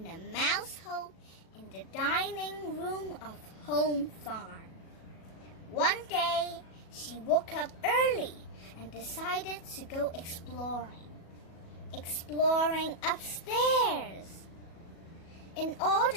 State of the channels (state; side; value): late; right; 37 ms